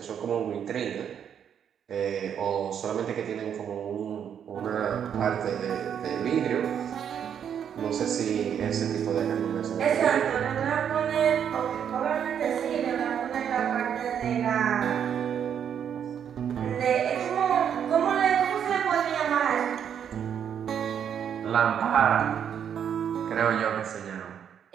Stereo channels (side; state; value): left; quieter; 8.5 dB